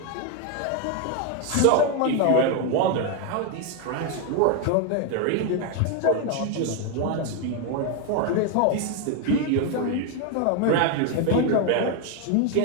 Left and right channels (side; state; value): both; different; correlation 0.01